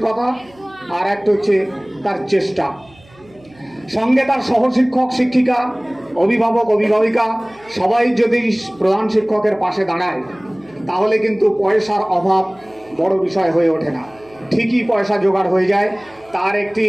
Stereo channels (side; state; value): right; noise; hum, 27 dB below the sound